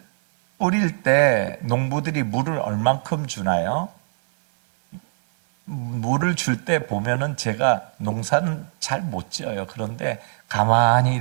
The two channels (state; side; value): silent; left; 64 dB below the other